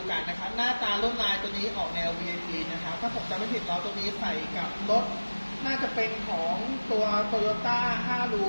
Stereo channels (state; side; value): inverted; both; correlation -1.00